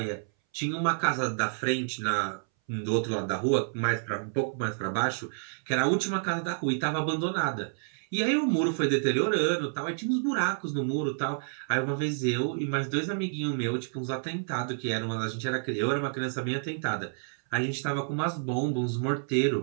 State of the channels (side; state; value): left; silent; 58 dB below the other